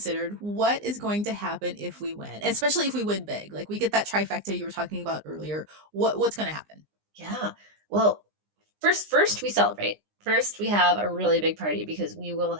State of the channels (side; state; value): left; late; 19 ms